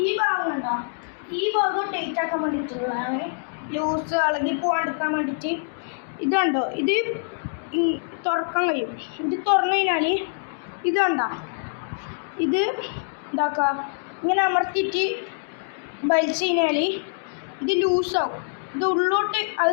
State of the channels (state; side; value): silent; right; digital silence